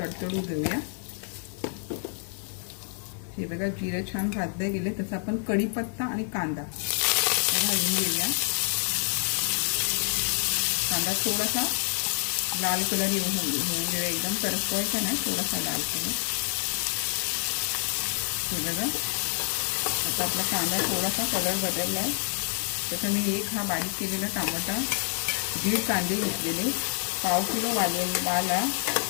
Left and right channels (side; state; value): right; silent; 60 dB below the other